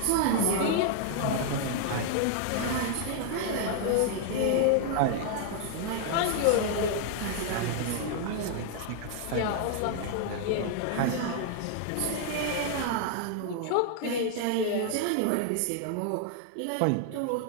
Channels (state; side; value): different; both; correlation 0.00